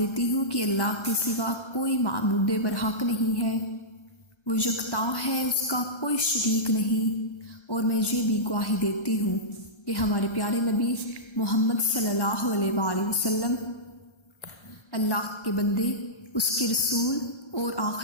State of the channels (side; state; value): right; late; 1.3 ms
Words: ہوں کہ اللہ کے سوا کوئی معبود برحق نہیں ہے، وہ یکتا ہے، اس کا کوئی شریک نہیں۔ اور میں یہ بھی گواہی دیتی ہوں کہ ہمارے پیارے نبی محمد صلی اللہ علیہ وآلہ وسلم اللہ کے بندے، اس کے رسول اور